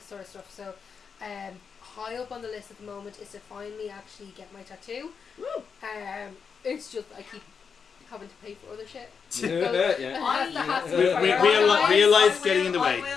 sort of stuff. So high up on the list at the moment is to finally actually get my tattoo. It's just I keep having to pay for other shit. Yeah. Real life getting in the way. I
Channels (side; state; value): right; quieter; 6.1 dB